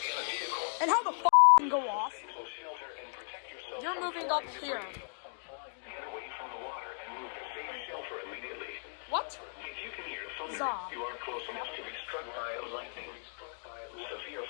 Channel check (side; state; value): right; silent; digital silence